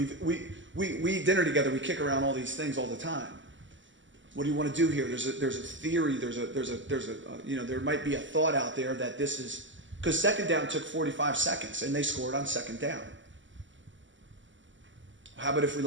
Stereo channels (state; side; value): late; left; 0.55 ms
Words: eat dinner together, we kick around all these things all the time. What do you want to do here? There's a theory, there might be a thought out there that this is, because second down took 45 seconds and they scored on second down. How about if we